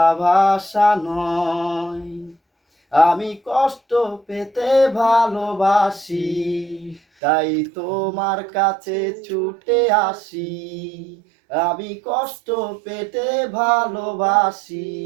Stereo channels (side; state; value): left; drops out; at 7.0 s